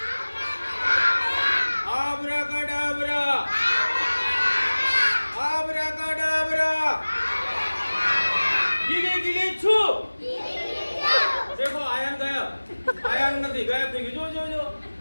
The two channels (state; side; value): inverted; both; correlation -1.00